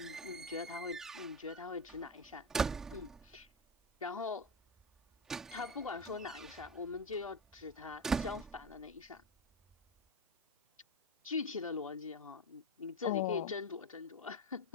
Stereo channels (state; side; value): normal; both; correlation 0.17